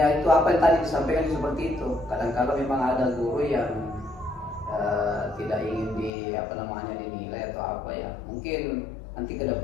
itu apa yang tadi disampaikan seperti itu. Kadang-kadang memang ada guru yang tidak ingin dinilai atau apa ya. Mungkin nanti ke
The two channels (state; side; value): drops out; right; at 6.1 s